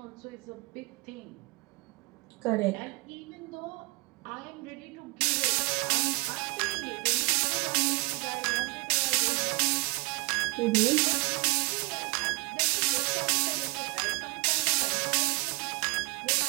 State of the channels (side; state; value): left; quieter; 28.3 dB